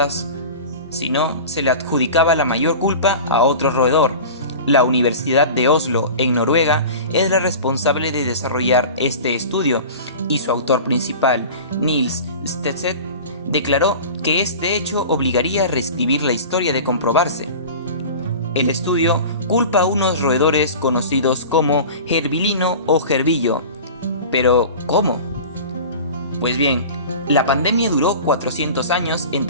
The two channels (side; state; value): both; inverted; correlation -0.36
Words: sino se le adjudicaba la mayor culpa a otro roedor. La Universidad de Oslo, en Noruega, es la responsable de desarrollar este estudio y su autor principal, Niels Stedset, declaró que este hecho obligaría a reescribir la historia de comprobarse. El estudio culpa a unos roedores conocidos como gerbilino o gerbillo. Pero, ¿cómo? Pues bien, la pandemia duró 400 años